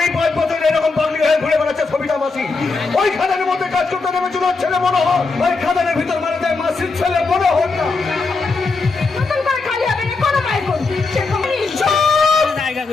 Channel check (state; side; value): quieter; right; 4.1 dB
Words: মাসি। ওই খাদানের মধ্যে কাজ করতে নেমেছিল ছেলে মনে হয়, ওই খাদানের ভিতর মারা যায় মাসির ছেলে মনে হয় না। নতুন করে খালি হবে না কোনো পাই কোন সে কোম্পানি